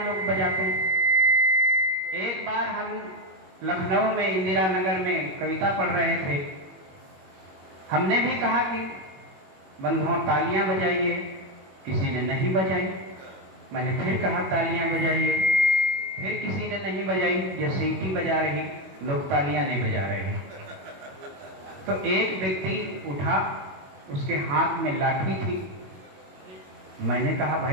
लोग बजाते हैं। एक बार हम लखनऊ में इंदिरा नगर में कविता पढ़ रहे थे। हमने भी कहा कि बंधुओं तालियां बजाइए, किसी ने नहीं बजाई। मैंने फिर कहा तालियां बजाइए, फिर किसी ने नहीं बजाई। ये सीटी बजा रही, लोग तालियां नहीं बजा रहे हैं। तो एक व्यक्ति उठा, उसके हाथ में लाठी थी। मैंने कहा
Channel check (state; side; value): late; left; 21 ms